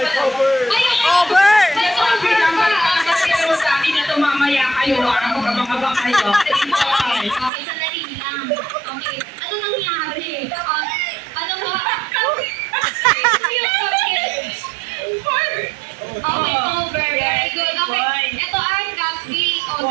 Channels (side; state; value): left; drops out; at 7.5 s